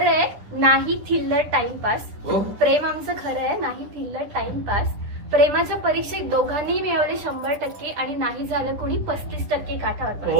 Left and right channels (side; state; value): left; late; 10 ms